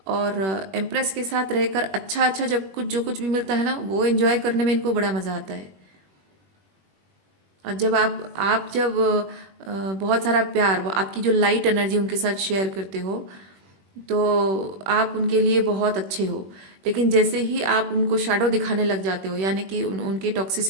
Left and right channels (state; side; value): late; left; 21 ms